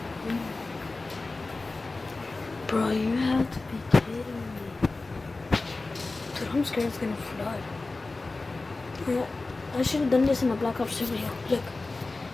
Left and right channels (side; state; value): right; quieter; 3.4 dB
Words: Bro, you have to be kidding me. Dude, I'm scared it's gonna flood. Yeah, I should have done this in a Black Ops 2 video. Look,